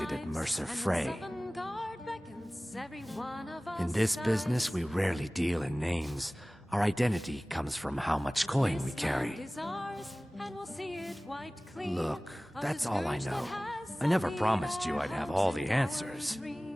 at Mercer Frey. In this business, we rarely deal in names. Our identity comes from how much coin we carry. Look, that's all I know. I never promised you I'd have all the answers.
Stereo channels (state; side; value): normal; both; correlation 0.98